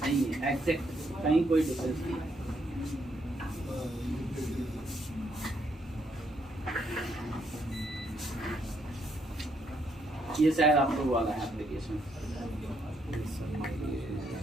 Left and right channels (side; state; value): both; normal; correlation 0.74